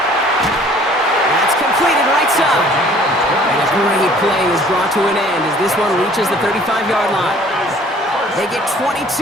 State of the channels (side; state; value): both; normal; correlation 0.54